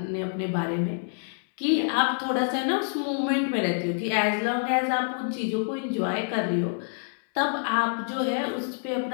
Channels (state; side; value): silent; right; 59 dB below the other